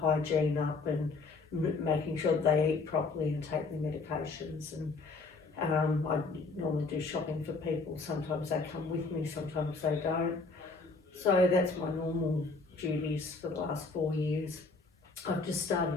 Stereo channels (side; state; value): right; quieter; 4.0 dB